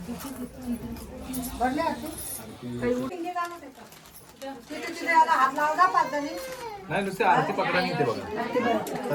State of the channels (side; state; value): both; identical; correlation 1.00